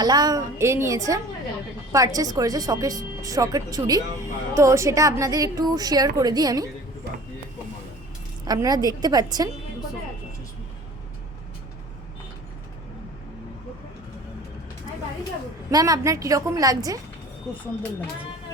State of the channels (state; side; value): normal; both; correlation 0.44